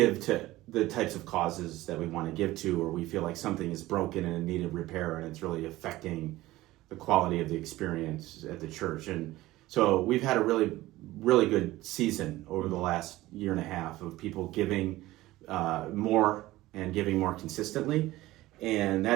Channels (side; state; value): left; quieter; 17.4 dB